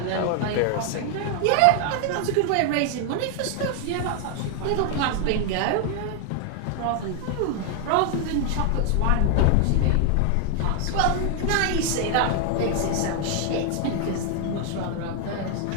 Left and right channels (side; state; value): both; different; correlation 0.00